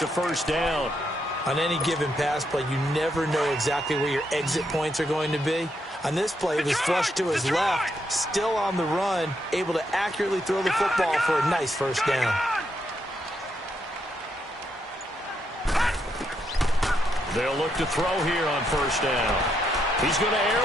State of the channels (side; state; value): both; normal; correlation 0.79